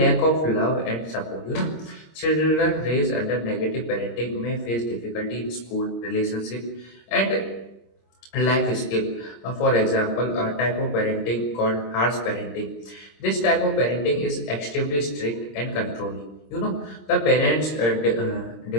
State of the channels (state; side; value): late; right; 26 ms